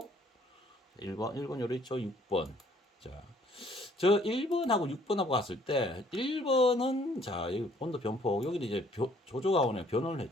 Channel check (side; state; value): both; normal; correlation 0.61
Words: 1번 요래 있죠. 6번. 자. 저 1번하고 6번하고 갔을 때 1번은 자 여기 온도 변폭 여기는 이제 조조가온에 변원을